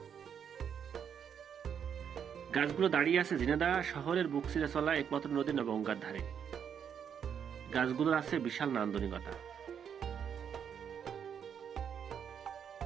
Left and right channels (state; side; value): quieter; left; 7.9 dB